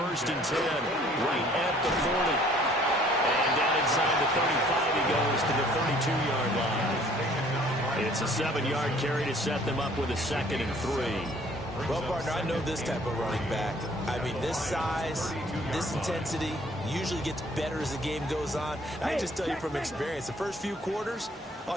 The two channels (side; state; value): both; normal; correlation 0.57